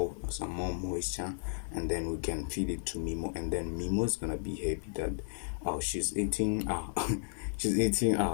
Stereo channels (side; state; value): right; silent; 55 dB below the other